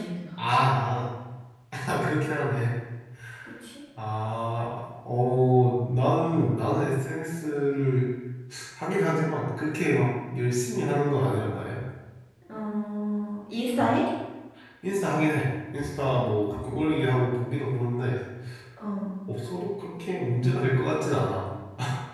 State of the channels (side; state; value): both; identical; correlation 1.00